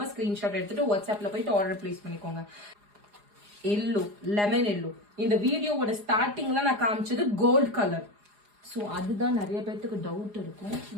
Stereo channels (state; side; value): late; left; 4.9 ms